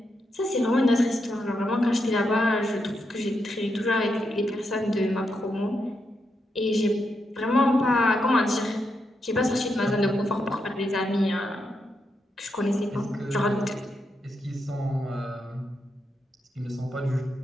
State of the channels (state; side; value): normal; both; correlation 0.83